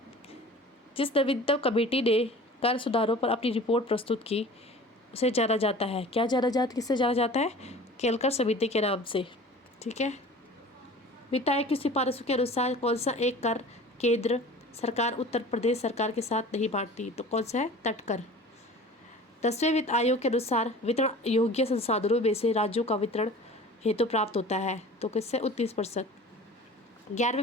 जिस नवीनतम कमेटी ने कर सुधारों पर अपनी रिपोर्ट प्रस्तुत की उसे जाना जाता है। क्या जाना जाता? किससे जाना जाता है? केलकर समिति के नाम से। ठीक है। वित्त आयोग की सिफारिशों के अनुसार कौन सा एक कर केंद्र सरकार उत्तर प्रदेश सरकार के साथ नहीं बांटती? तो कौन सा है? तटकर। 10वें वित्त आयोग के अनुसार वितरण योग्य संसाधनों में से राज्यों का वितरण हेतु प्राप्त होता है। तो किससे? 29%। 11वें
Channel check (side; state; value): both; normal; correlation 0.42